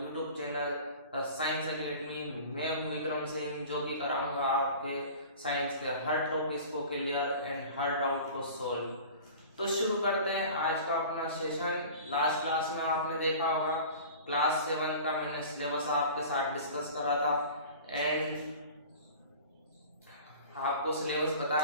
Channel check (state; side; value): inverted; both; correlation -0.40